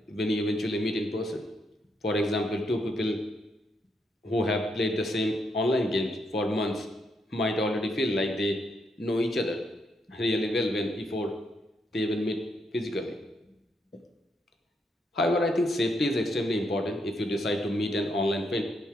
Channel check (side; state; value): both; normal; correlation 0.78